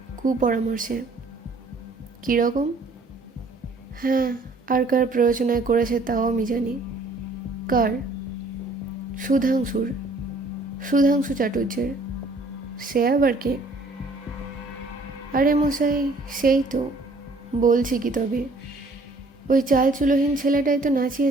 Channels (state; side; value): quieter; left; 3.0 dB